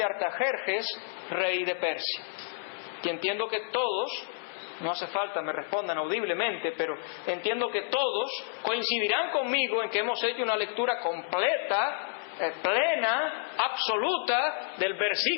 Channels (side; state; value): right; silent; 58 dB below the other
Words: Artajerjes, rey de Persia. Que entiendo que todos, no hace falta me respondan audiblemente, pero entiendo que todos coincidirán conmigo en que hemos hecho una lectura completa, plena, absoluta del